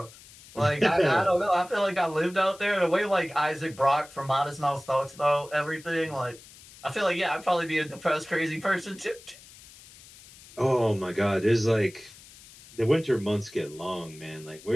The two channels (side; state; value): left; noise; hiss, 21 dB below the sound